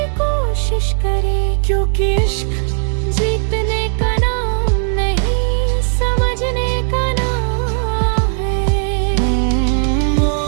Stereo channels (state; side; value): silent; left; 59 dB below the other